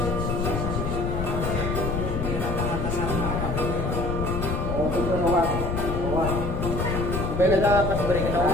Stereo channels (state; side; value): noise; left; rumble, 2 dB below the sound